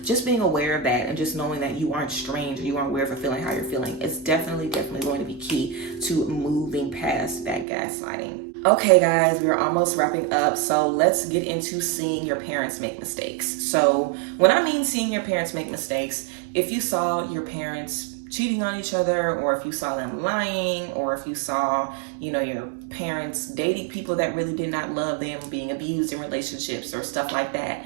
just being aware of that and just knowing that you aren't strange, or you aren't aware of feeling how you're feeling, is definitely going to be key to moving past that gaslighting. Okay guys, we're almost wrapping up, so let's get into seeing your parents make mistakes. So when I mean seeing your parents make mistakes, if you saw your parents cheating on each other, or if you saw them lying, or if you saw, your parents dating people that really did not love them, being abused in relationships or stuff like that,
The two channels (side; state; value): left; drops out; at 7.7 s